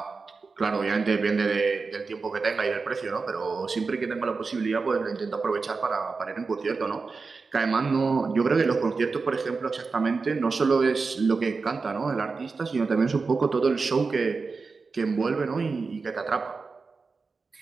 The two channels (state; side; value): quieter; left; 4.4 dB